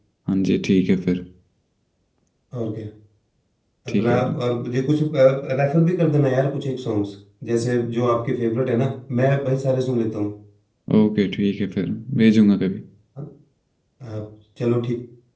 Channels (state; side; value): identical; both; correlation 1.00